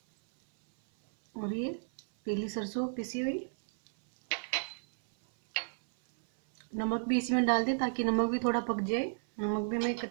और ये पीली सरसों पिसी हुई। नमक भी इसी में डाल दें ताकि नमक भी थोड़ा पक जाए। नमक भी हमें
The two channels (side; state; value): left; silent; 56 dB below the other